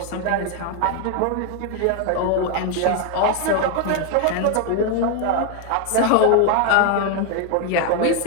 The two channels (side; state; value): both; different; correlation 0.01